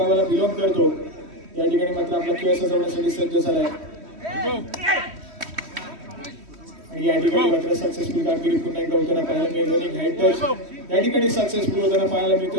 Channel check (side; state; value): left; late; 3.1 ms